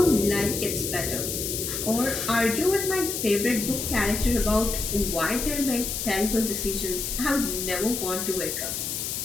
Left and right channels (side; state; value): left; noise; hiss, 3 dB below the sound